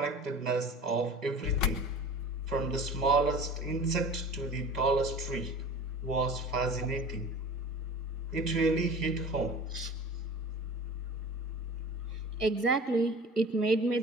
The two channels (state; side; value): normal; both; correlation 0.39